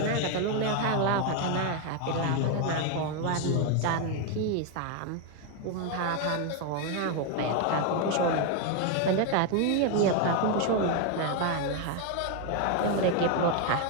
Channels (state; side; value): different; both; correlation 0.01